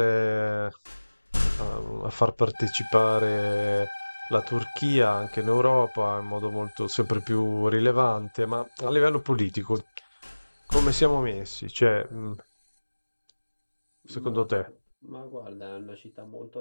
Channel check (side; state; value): both; inverted; correlation -1.00